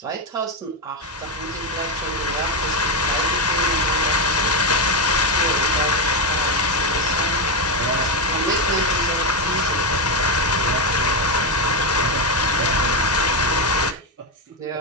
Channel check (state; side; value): normal; both; correlation 0.07